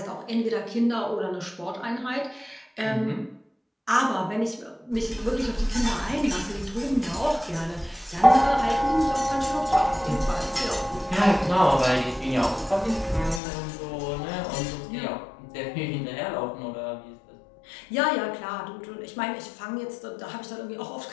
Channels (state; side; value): drops out; right; at 13.4 s